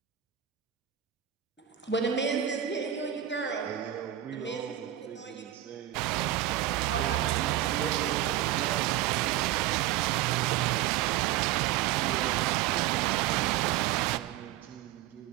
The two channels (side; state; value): left; quieter; 12.3 dB